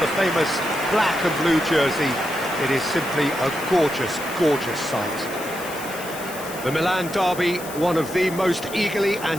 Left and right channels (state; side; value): noise; left; hiss, 13 dB below the sound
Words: the famous black and blue jersey. It is simply a gorgeous, gorgeous sight. The Milan Derby, one of the most eagerly